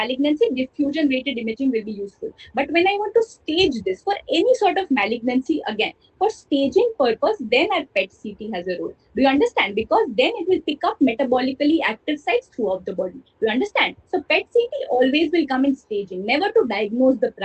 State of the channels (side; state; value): both; identical; correlation 1.00